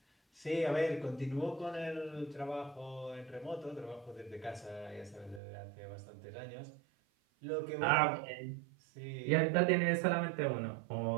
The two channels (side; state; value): left; drops out; at 5.4 s